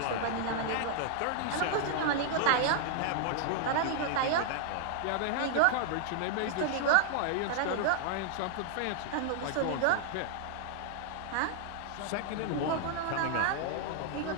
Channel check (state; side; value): different; both; correlation -0.01